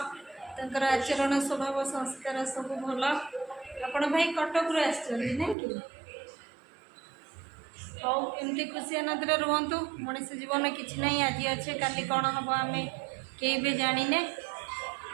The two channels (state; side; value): drops out; left; at 5.6 s